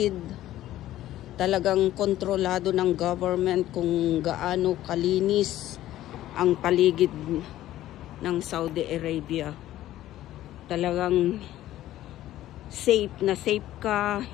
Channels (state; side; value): quieter; right; 14.0 dB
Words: Talagang kontrolado ng government kung gaano kalinis ang paligid ng Saudi Arabia. Talagang safe na safe ka,